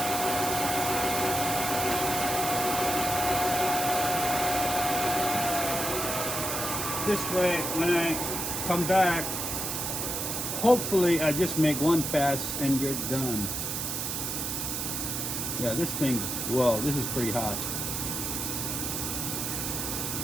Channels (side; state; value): right; noise; hiss, 2 dB below the sound